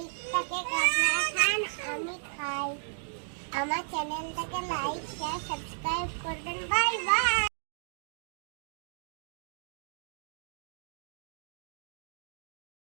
কেক আপনারা খান, আমি খাই। আমার চ্যানেলটাকে লাইক শেয়ার সাবস্ক্রাইব করবেন। Bye bye.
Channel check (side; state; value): left; silent; digital silence